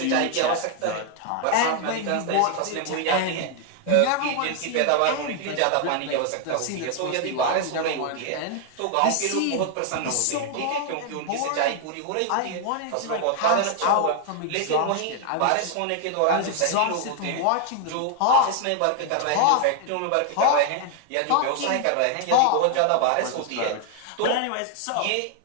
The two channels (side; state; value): both; different; correlation 0.00